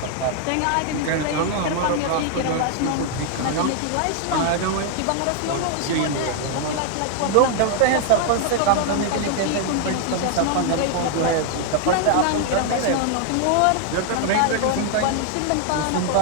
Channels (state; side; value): different; both; correlation 0.00